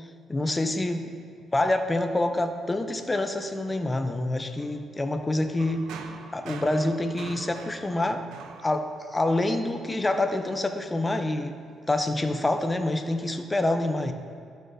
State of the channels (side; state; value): both; normal; correlation 0.92